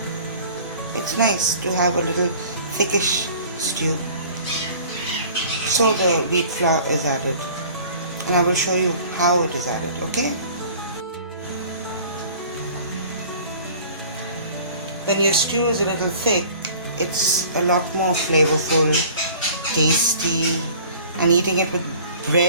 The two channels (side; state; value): both; inverted; correlation -0.47